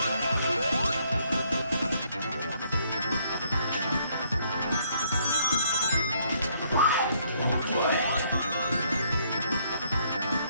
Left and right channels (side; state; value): both; inverted; correlation -0.67